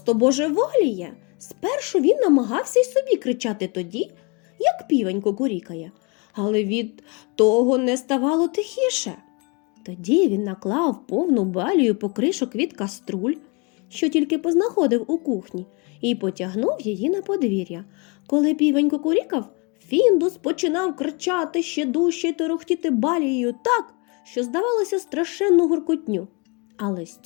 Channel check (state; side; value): quieter; right; 31.0 dB